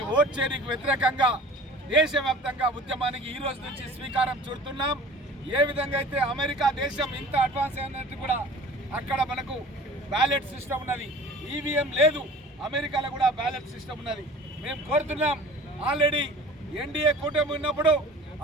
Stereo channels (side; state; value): both; normal; correlation 0.44